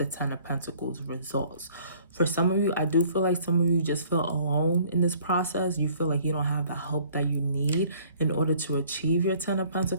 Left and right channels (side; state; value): both; inverted; correlation -0.57